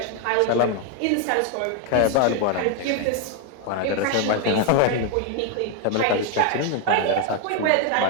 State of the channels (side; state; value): both; different; correlation 0.00